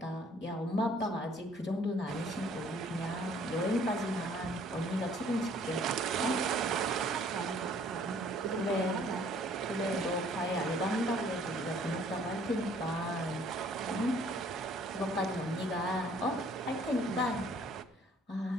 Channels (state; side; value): normal; both; correlation 0.58